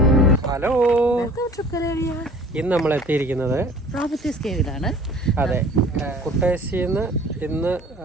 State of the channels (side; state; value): both; normal; correlation 0.49